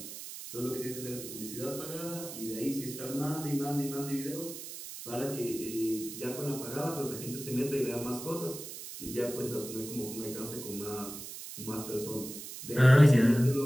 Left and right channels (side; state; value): right; noise; hiss, 10 dB below the sound